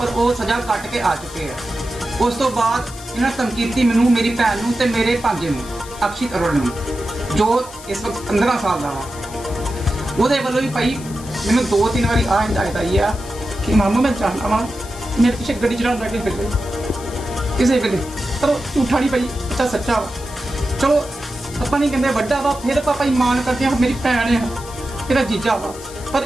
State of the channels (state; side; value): noise; left; hiss, 16 dB below the sound